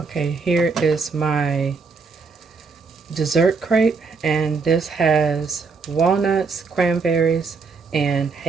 Okay, here is my dessert crepe, and this has walnuts, cranberries, and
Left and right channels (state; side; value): quieter; left; 4.7 dB